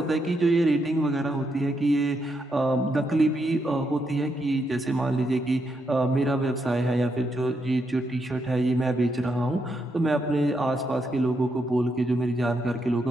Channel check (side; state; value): both; normal; correlation 0.80